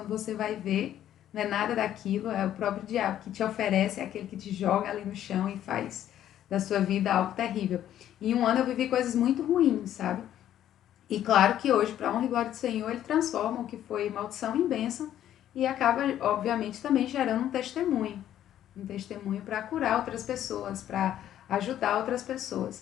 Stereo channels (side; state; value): right; quieter; 11.4 dB